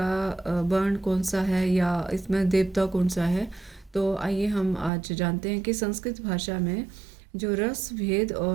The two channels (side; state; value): left; drops out; at 4.9 s